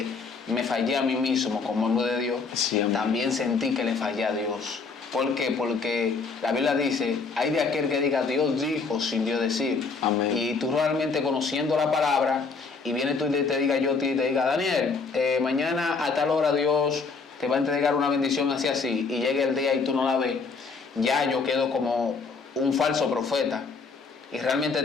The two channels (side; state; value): right; quieter; 4.6 dB